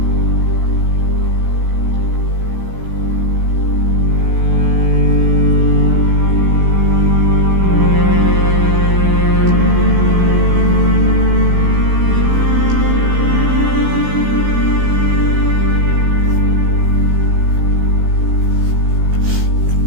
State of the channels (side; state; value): left; late; 16 ms